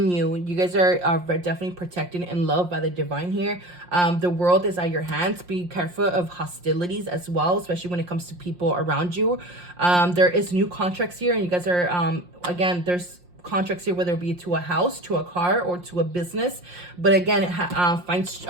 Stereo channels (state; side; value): late; left; 5.6 ms